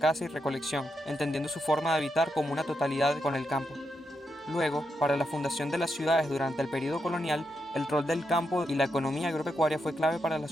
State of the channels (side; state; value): both; normal; correlation 0.83